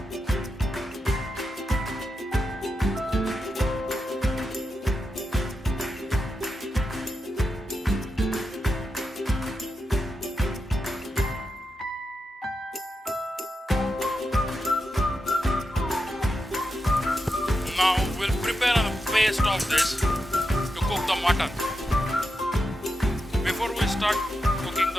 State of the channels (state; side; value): normal; both; correlation 0.87